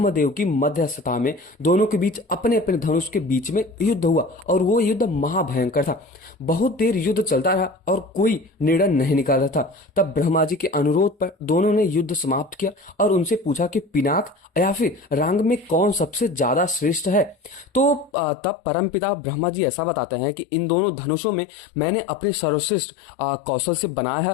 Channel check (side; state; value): right; drops out; at 18.1 s